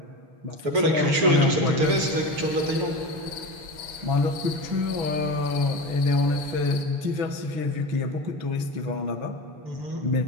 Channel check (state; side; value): late; left; 6.8 ms